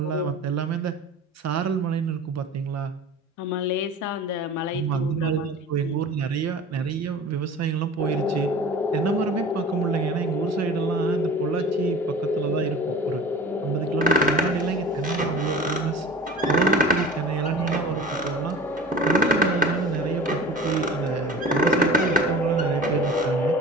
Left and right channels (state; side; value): normal; both; correlation 0.38